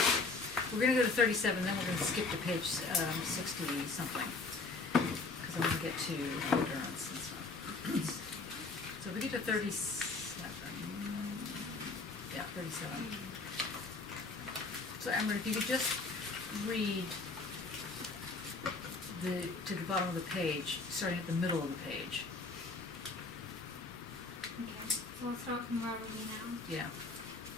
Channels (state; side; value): quieter; right; 3.8 dB